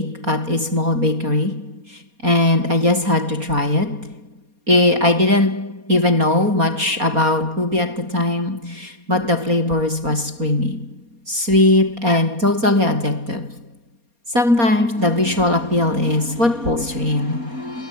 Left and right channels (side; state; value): left; late; 4.2 ms